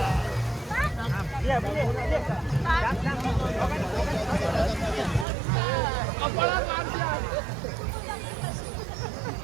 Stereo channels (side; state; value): left; drops out; at 5.2 s